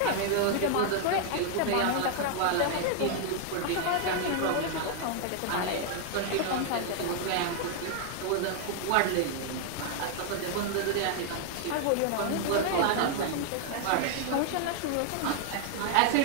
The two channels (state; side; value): different; both; correlation 0.00